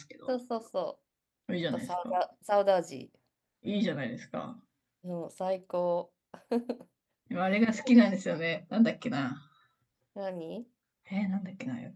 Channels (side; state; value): both; identical; correlation 1.00